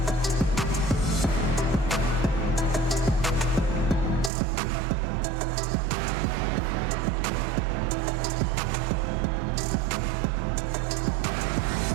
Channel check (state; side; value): drops out; left; at 4.3 s